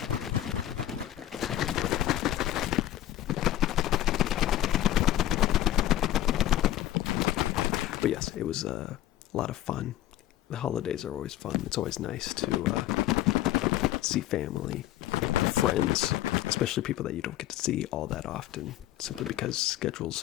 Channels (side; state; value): right; quieter; 13.2 dB